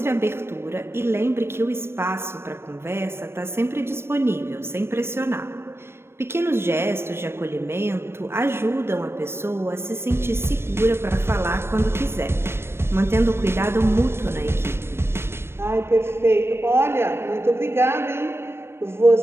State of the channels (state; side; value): late; left; 0.12 ms